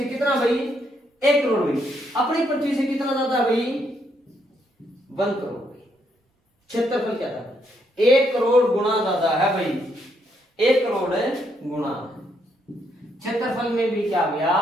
कितना भाई, 1 करोड़ भाई, अपनी पृथ्वी से कितना ज्यादा भाई, 1 करोड़ भाई। क्षेत्रफल क्या था, 1 करोड़ गुना ज्यादा है भाई, 1 करोड़ गुना। क्षेत्रफल में भी क्या गया,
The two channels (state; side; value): normal; both; correlation 0.74